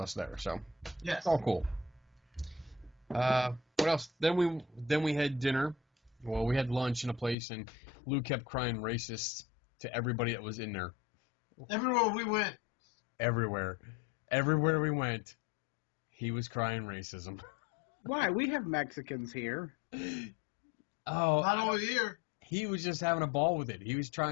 there, so yes. It's all cool. What else? Then we had dinner. Well, we had lunch in a place, and Lou kept crying racist to everybody that was in there. Everywhere we went. Everywhere we went, he was crying racism. Why? We have Mexicans here. Oh, Not over here. He was just having a ball with it. He was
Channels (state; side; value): drops out; right; at 7.4 s